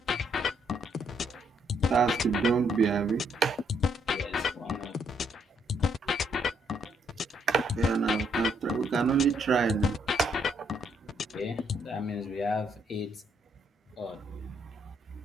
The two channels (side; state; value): both; normal; correlation 0.72